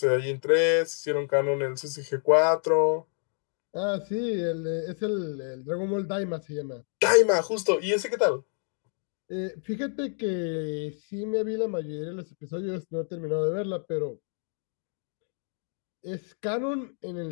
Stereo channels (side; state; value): right; silent; 56 dB below the other